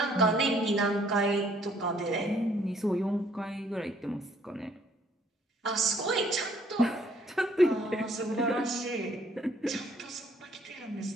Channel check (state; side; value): normal; both; correlation 0.63